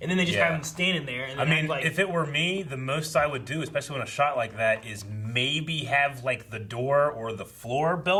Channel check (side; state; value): both; identical; correlation 1.00